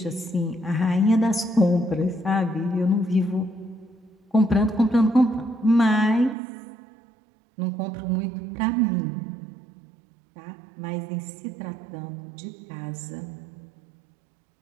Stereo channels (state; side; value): drops out; left; at 6.4 s